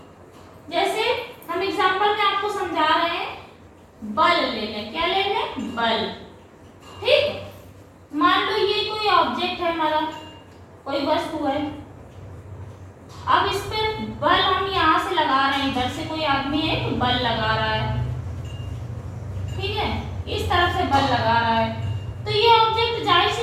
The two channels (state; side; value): identical; both; correlation 1.00